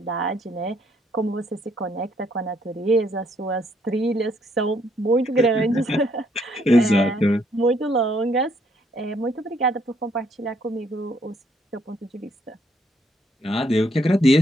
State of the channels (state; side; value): normal; both; correlation 0.69